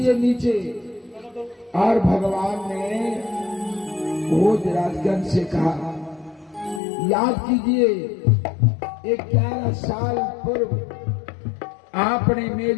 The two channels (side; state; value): right; drops out; at 6.8 s